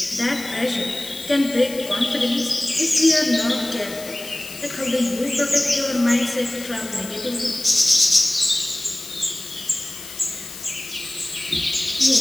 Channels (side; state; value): left; noise; hiss, 13 dB below the sound